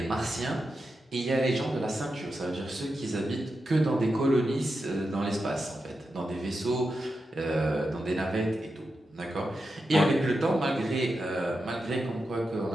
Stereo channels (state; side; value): normal; both; correlation 0.89